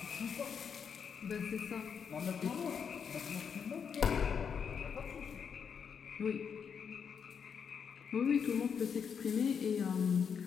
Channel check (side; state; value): right; quieter; 6.8 dB